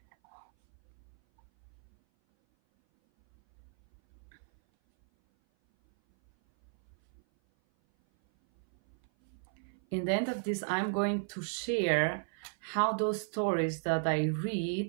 going to share how those stories that I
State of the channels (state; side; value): silent; left; 55 dB below the other